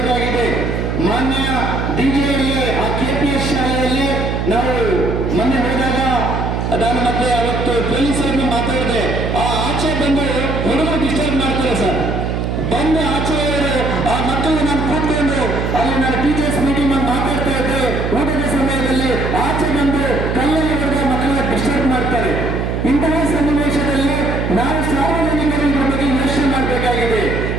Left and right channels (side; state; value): right; noise; hum, 1 dB below the sound